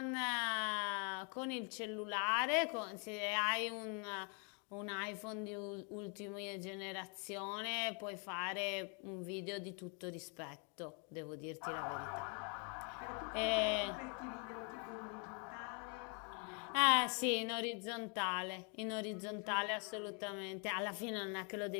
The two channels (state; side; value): quieter; right; 37.8 dB